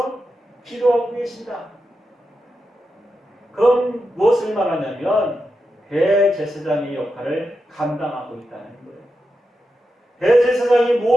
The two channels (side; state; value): both; normal; correlation 0.88